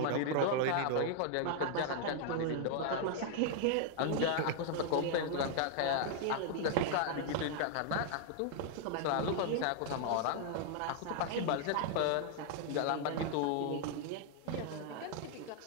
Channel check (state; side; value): different; both; correlation 0.00